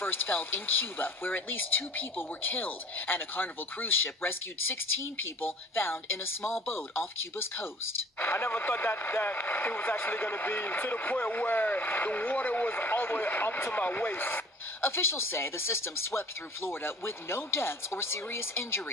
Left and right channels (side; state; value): both; normal; correlation 0.49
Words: felt in Cuba, where at least 2 people were killed, and a Carnival cruise ship rescued 16 people found in a small boat off Cuba's coast. I never thought that it was actually going to be to the point where the water was all the way up to my waist. Officials say the system swept through Florida with no deaths or serious